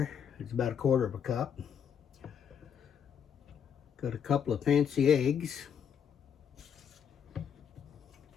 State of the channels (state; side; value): quieter; right; 7.9 dB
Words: It's about 1/4 cup. Got a couple of fancy eggs.